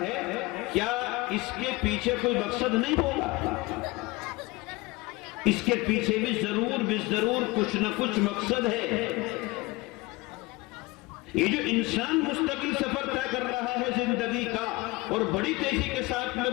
ہے، کیا اس کے پیچھے کوئی مقصد نہیں ہوگا؟ اس کے پیچھے بھی ضرور کچھ نہ کچھ مقصد ہے. یہ جو انسان مستقل سفر طے کر رہا ہے زندگی کا اور بڑی تیزی کے ساتھ میں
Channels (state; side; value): quieter; right; 22.4 dB